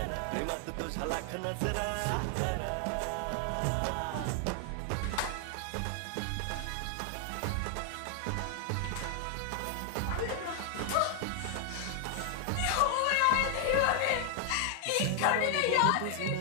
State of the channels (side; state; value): both; different; correlation 0.00